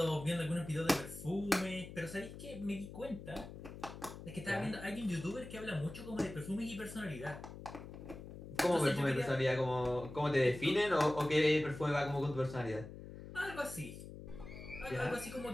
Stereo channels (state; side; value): noise; left; hum, 12 dB below the sound